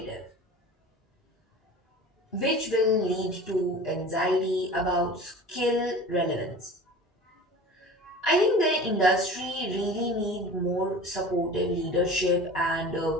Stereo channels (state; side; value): normal; both; correlation 0.38